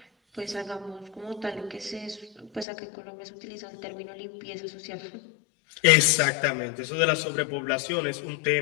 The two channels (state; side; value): drops out; right; at 2.7 s